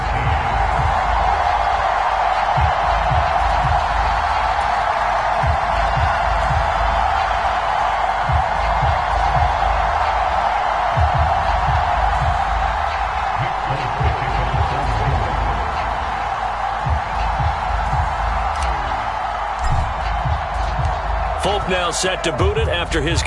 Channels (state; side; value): identical; both; correlation 1.00